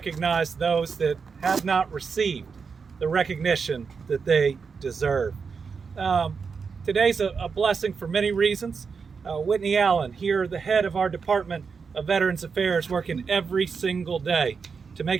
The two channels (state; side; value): quieter; left; 5.5 dB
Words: those that have not received the recognition that they deserve. Today's a blessing for many reasons. Whitney Allen, here, the head of our Department of Veterans Affairs, working every single day to